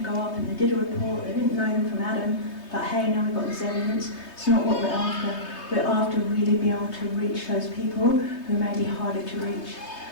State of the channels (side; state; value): right; late; 3.2 ms